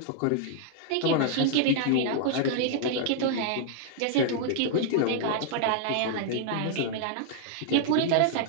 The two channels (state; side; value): different; both; correlation -0.01